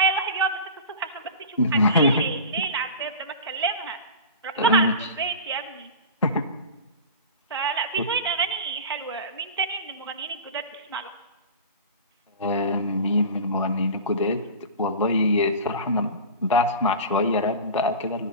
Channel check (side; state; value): both; inverted; correlation -0.32